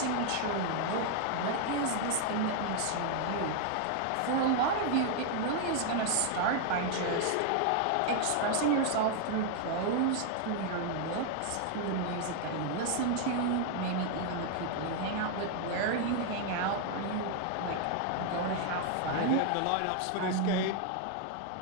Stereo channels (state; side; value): different; both; correlation 0.00